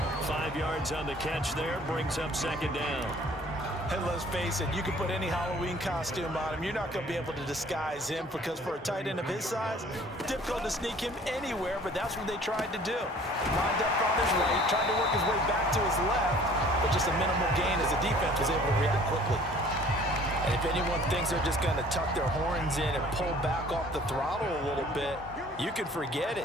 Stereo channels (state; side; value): normal; both; correlation 0.53